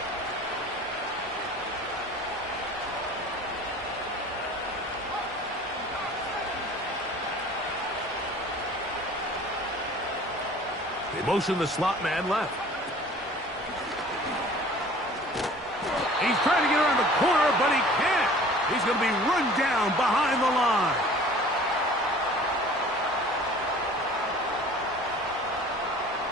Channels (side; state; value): both; normal; correlation 0.47